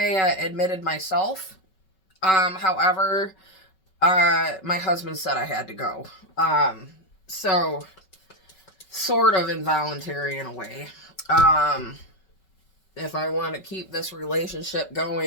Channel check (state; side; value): late; right; 5.3 ms